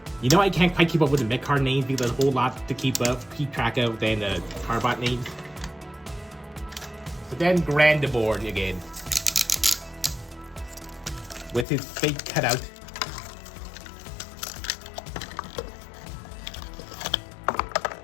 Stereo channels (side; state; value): right; drops out; at 11.7 s